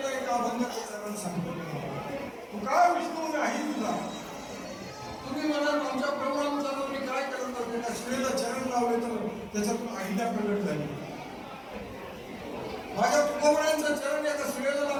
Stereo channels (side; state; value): both; identical; correlation 1.00